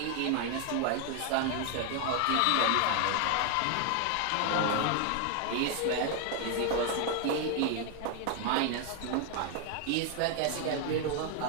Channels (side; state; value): both; different; correlation 0.00